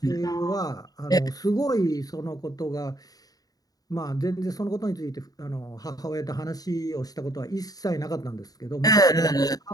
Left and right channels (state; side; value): late; right; 0.18 ms